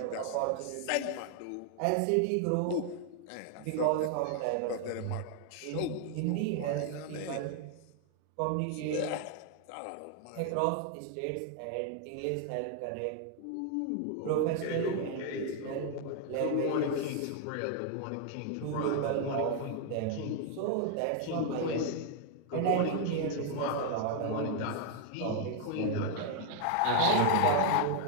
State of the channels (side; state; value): both; different; correlation 0.00